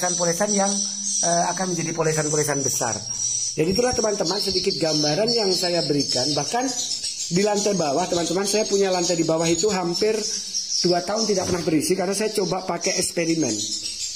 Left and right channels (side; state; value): both; identical; correlation 1.00